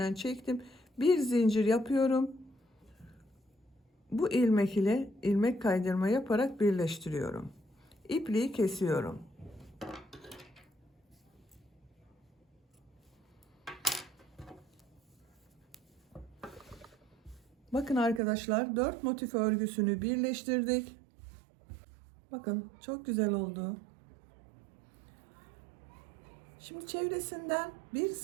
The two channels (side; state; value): left; drops out; at 18.2 s